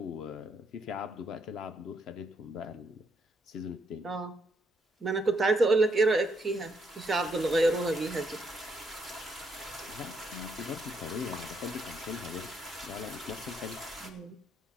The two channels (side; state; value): both; normal; correlation 0.74